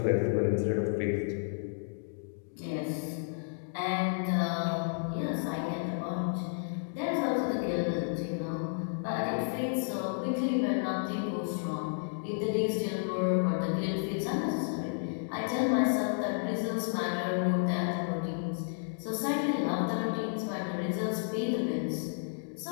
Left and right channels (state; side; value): silent; right; digital silence